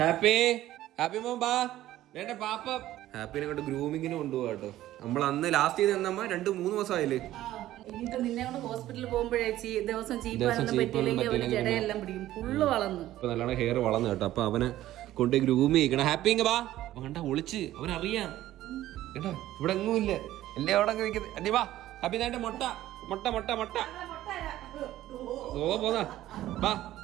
ഹാപ്പി ഹാപ്പി മോൻ ബാ വേണ്ട പാപ്പ ഹാപ്പിനെ കൊണ്ട് ഗ്രൂമിങ്ങിന് കൊണ്ടുപോകാ കേട്ടോ. നമ്മൾ അന്ന് ലാസ്റ്റ് ചെയ്ത് തന്നമ്മ 2-3 ദിവസമായില്ലേ. ഇനിയിപ്പോ നിന്നെ കൊണ്ട് ഹോസ്പിറ്റലിൽ പോകുമ്പോഴേ ദിവസം ചീപ്പാനൊന്നും പറ്റിയില്ലെങ്കിൽ അവന് ജടയെല്ലാം പിടിക്കും. ഫുള്ള് വളർന്നു ഇപ്പൊ നല്ലോണം ഹെയർ വളർന്നു കേട്ടോ. അപ്പൊ അവനെ കൊണ്ട് ഗ്രൂമി ചെയ്യണം. ഹാപ്പി ഇങ്ങ ബാ വേണ്ട ഒളിച്ച് അവനറിയാം കേട്ടോ. ഇവിടെ എങ്ങും ഇല്ല എല്ലാം അവിടെ നിൽക്കുന്നത്. അല്ലേ വാ ഹാപ്പി നേണ്ട മുട്ട മുട്ട മുട്ട മുട്ട ഓ പോന്നാ വാ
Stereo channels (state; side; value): quieter; left; 14.2 dB